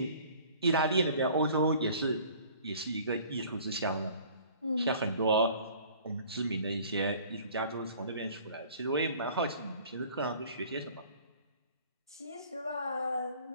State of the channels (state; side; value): inverted; both; correlation -0.51